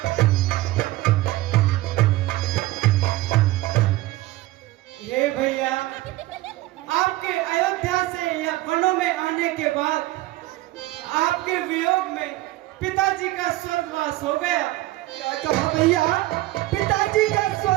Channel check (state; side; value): quieter; left; 17.5 dB